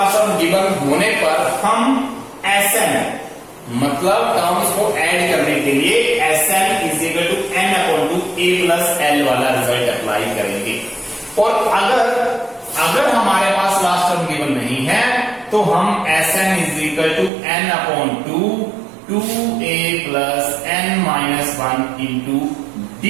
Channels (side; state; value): left; drops out; at 17.3 s